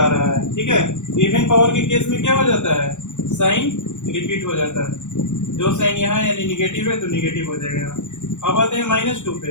रहा है। ठीक है, इवन पावर के केस में क्या हो जाता है, साइन रिपीट हो जाता है। जो साइन यहाँ यानी निगेटिव है तो निगेटिव हो जाएगा। अब आते हैं -2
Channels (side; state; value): right; late; 0.85 ms